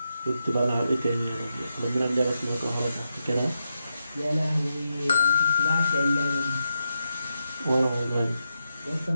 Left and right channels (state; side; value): inverted; both; correlation -0.86